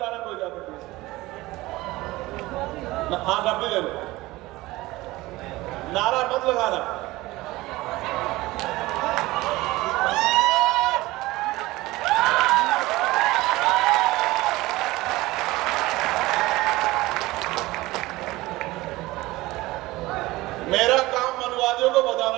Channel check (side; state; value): left; quieter; 19.3 dB